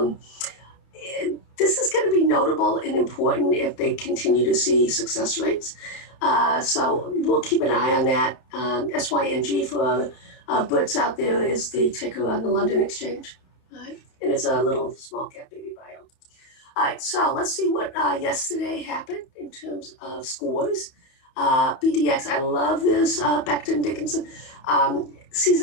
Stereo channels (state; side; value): late; right; 30 ms